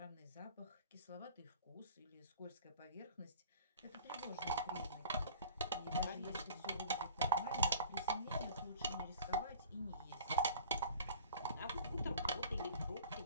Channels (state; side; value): inverted; both; correlation -0.44